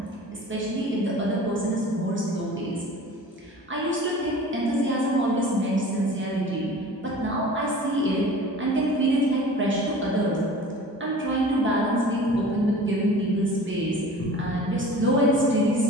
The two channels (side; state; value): both; normal; correlation 0.42